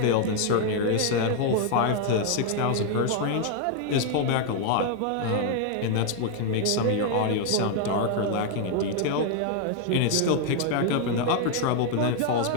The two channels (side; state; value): both; different; correlation 0.00